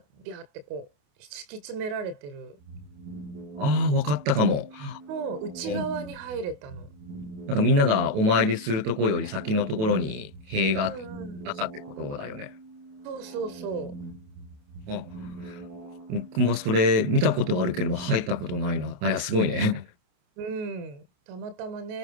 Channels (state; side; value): late; left; 28 ms